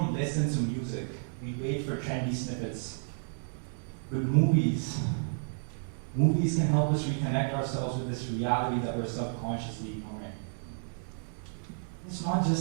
listen to music, we wait for trendy snippets. But movies can help us reconnect ourselves with this reality that we're subconsciously ignoring. It's not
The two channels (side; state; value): left; silent; digital silence